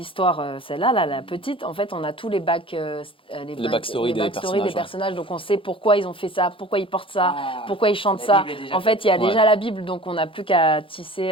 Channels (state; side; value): late; right; 0.25 ms